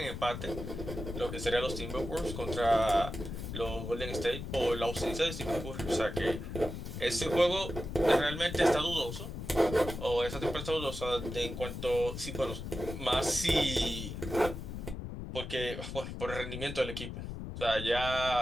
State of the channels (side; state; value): left; noise; rumble, 7 dB below the sound